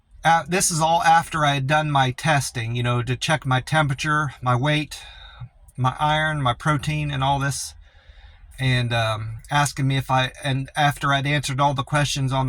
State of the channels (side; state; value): both; identical; correlation 1.00